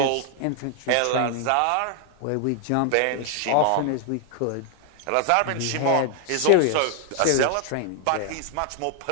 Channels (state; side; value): different; both; correlation 0.00